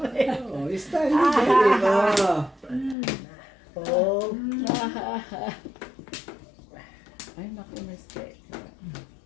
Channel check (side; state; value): right; drops out; at 3.0 s